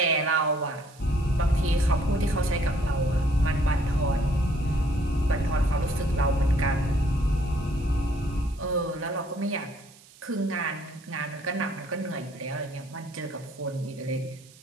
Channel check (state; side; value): noise; right; hiss, 24 dB below the sound